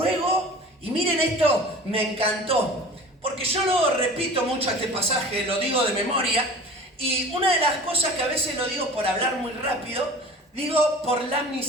y miren esto, me encantó. Porque yo lo repito mucho este pasaje, lo digo de memoria, y una de las cosas que a veces lo digo por hablar muy rápido, digo por la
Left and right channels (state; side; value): normal; both; correlation 0.41